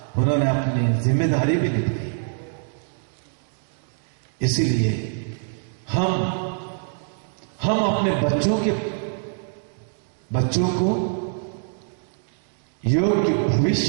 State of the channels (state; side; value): silent; left; digital silence